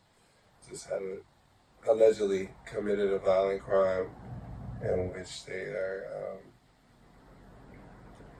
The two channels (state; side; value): identical; both; correlation 1.00